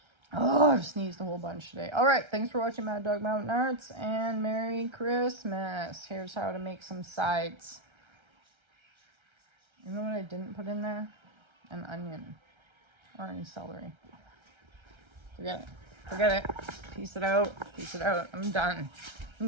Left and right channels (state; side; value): late; left; 1.3 ms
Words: Oh, I've sneezed a whole bunch today. All right, thanks for watching Mad Dog Mountain Arts, and Merry Christmas. Here's how to make some sides. You know what I didn't put in there? An onion or any celery. Forget it. Forget it. Piece it out. Piece it out. I'm done. I'm